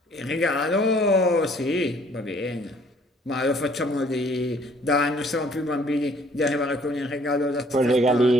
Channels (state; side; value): normal; both; correlation 0.59